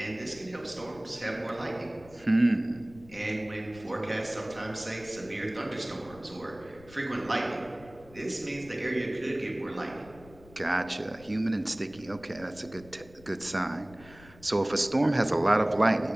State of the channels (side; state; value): left; noise; rumble, 22 dB below the sound